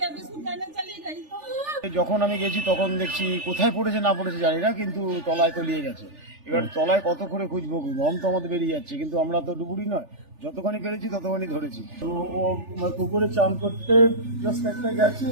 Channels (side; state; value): left; late; 3.4 ms